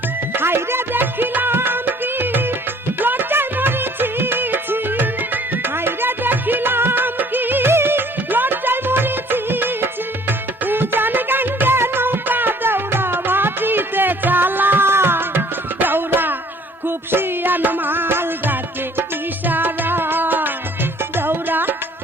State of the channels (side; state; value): both; normal; correlation 0.57